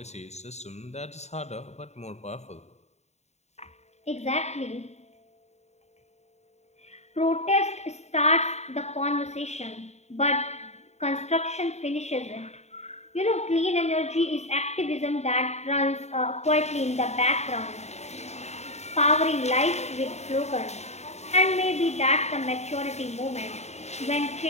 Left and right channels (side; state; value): right; late; 0.32 ms